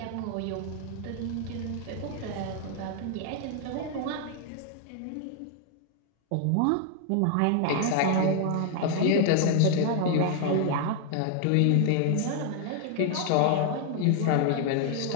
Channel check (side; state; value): both; different; correlation 0.00